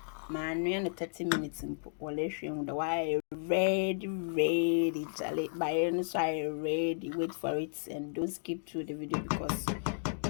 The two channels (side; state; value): right; silent; digital silence